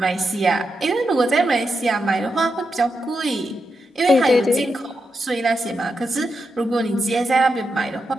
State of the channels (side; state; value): both; normal; correlation 0.86